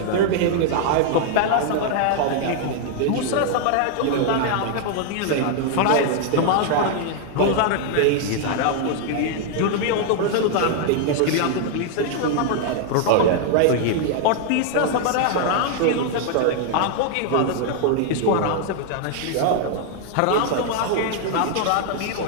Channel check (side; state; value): both; different; correlation 0.00